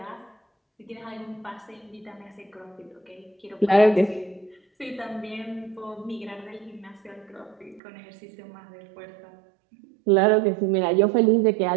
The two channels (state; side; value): drops out; left; at 7.8 s